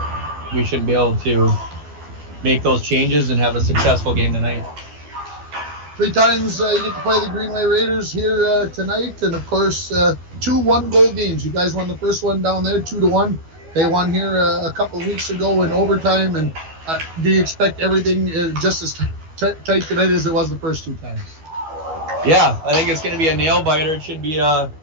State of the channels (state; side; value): late; left; 12 ms